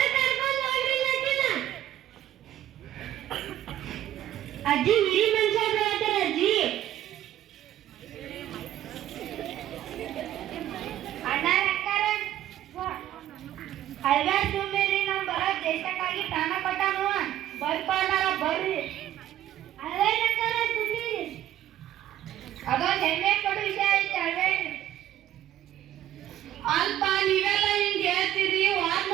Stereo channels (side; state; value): left; quieter; 12.6 dB